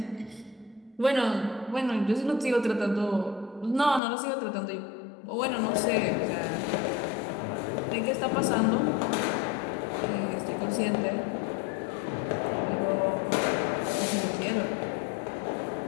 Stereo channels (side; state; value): right; drops out; at 4.0 s